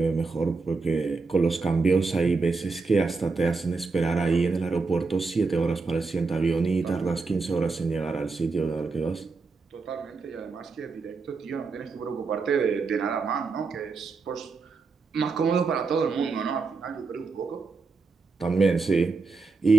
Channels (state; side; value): quieter; left; 4.3 dB